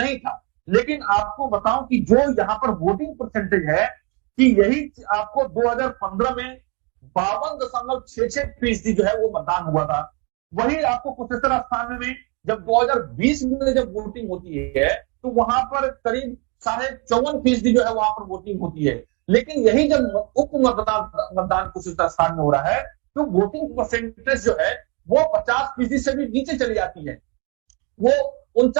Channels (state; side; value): quieter; left; 32.3 dB